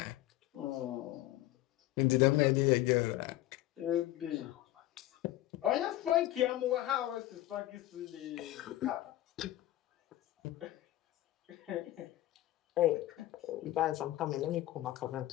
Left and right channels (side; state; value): right; quieter; 15.3 dB